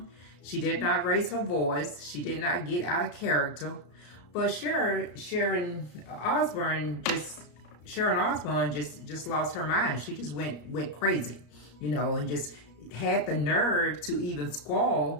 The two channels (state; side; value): late; right; 34 ms